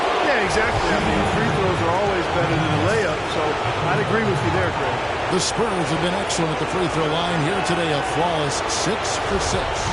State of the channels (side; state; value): both; identical; correlation 1.00